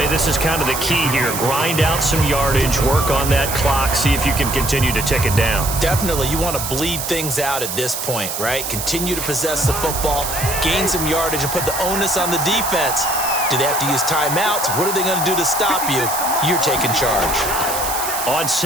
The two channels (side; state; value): right; noise; hiss, 4 dB below the sound